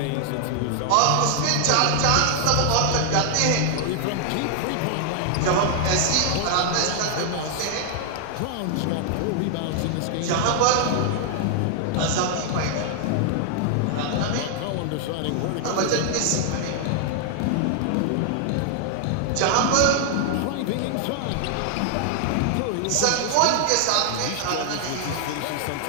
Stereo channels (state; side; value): different; both; correlation 0.00